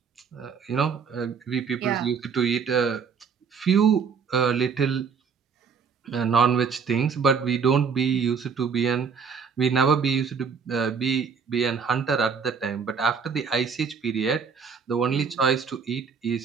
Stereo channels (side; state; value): left; quieter; 6.1 dB